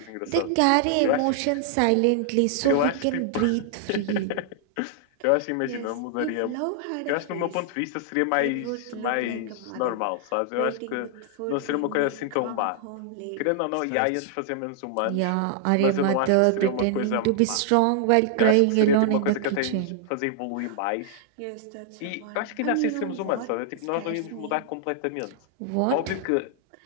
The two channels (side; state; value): both; different; correlation -0.01